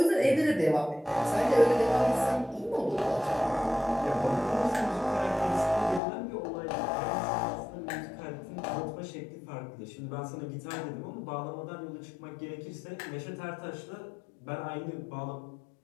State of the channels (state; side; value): drops out; right; at 6.0 s